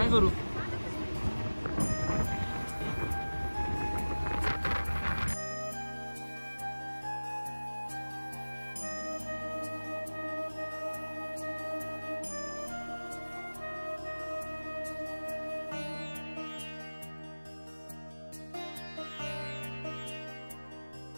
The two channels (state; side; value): inverted; both; correlation -1.00